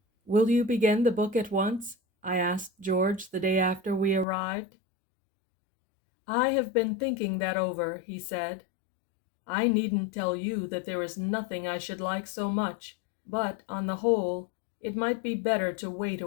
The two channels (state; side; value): drops out; right; at 4.2 s